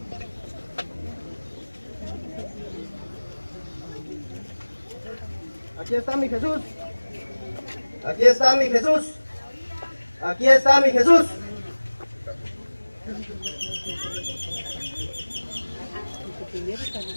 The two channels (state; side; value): inverted; both; correlation -1.00